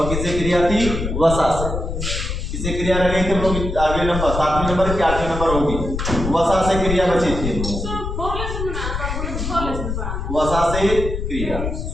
किससे क्रिया थी? वसा से। किससे क्रिया रह गई थी? हम लोग आगे नंबर 7वें नंबर की 8वें नंबर होगी, वसा से क्रिया बची थी। वसा से क्रिया,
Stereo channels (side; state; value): left; noise; rumble, 4 dB below the sound